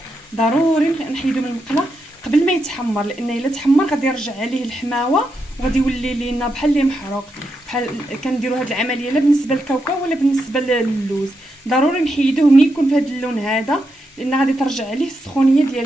ضروري نحيدو من المقله قبل ما يتحمر، لان الا تحمر غادي يرجع عليه الحماوه وغادي يولي لينا بحال اللي محروق. بحال كنديروا هذه العمليه لا بالنسبه للكاوكاو ولا بالنسبه للوز. ضروري نحيدوه ملي يكون في هذا اللون هذا، لان غادي ترجع عليه السخونيه ديال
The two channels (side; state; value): both; normal; correlation 0.84